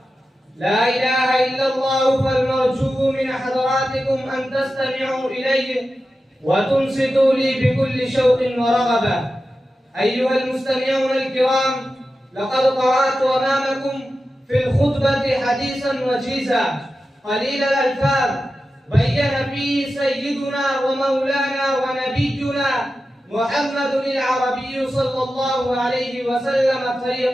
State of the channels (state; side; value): normal; both; correlation 0.92